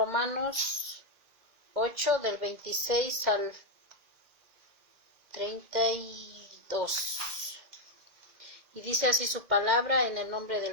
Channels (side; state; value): left; late; 2.1 ms